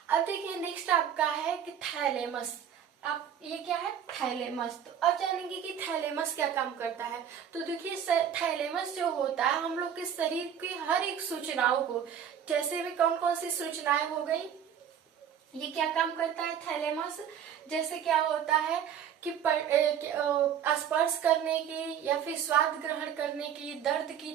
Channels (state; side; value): quieter; left; 8.7 dB